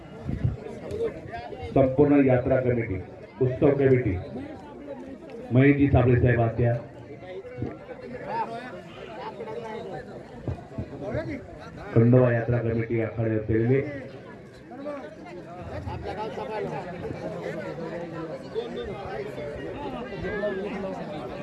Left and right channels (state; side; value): identical; both; correlation 1.00